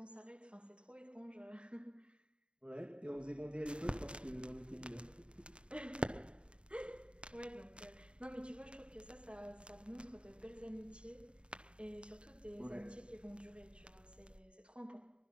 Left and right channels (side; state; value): left; late; 0.054 ms